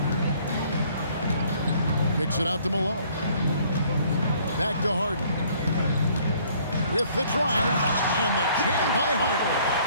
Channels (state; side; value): inverted; both; correlation -0.60